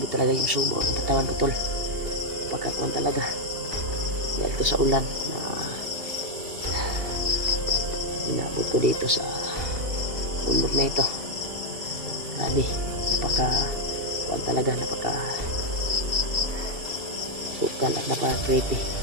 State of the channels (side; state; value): left; late; 2.8 ms